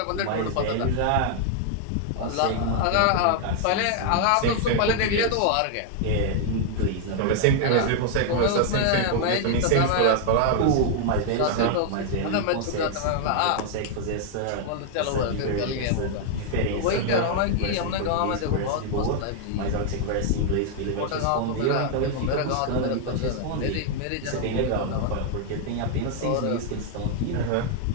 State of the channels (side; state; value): both; different; correlation 0.00